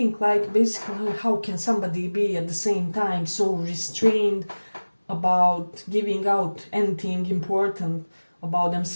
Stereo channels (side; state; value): both; inverted; correlation -1.00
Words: basically, how can somebody be at the same time so restrained about giving out anything important about